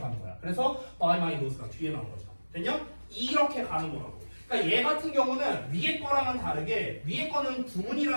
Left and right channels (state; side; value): inverted; both; correlation -1.00